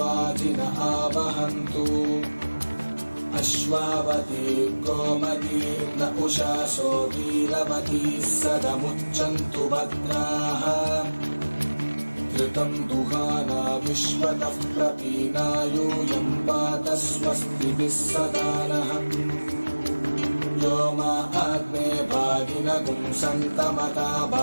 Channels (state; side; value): inverted; both; correlation -1.00